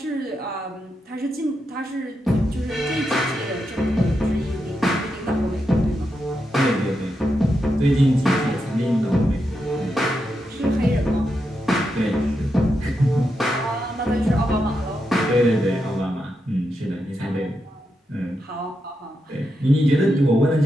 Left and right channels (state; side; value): normal; both; correlation 0.85